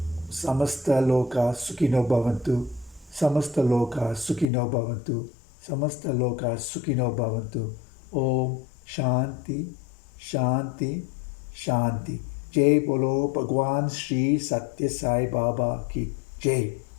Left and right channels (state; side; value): drops out; right; at 4.5 s